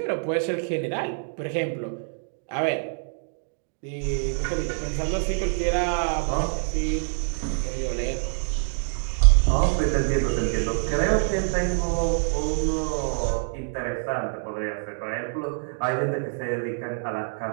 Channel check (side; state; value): left; silent; digital silence